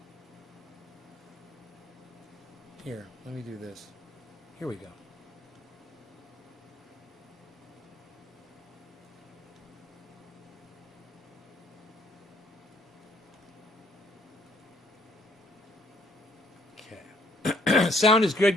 Here, let me do this. Here we go. Okay. Sound is good,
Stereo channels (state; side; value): normal; both; correlation 0.64